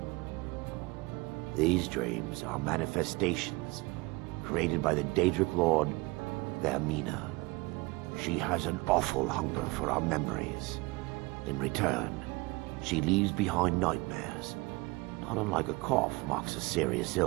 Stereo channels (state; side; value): quieter; left; 24.3 dB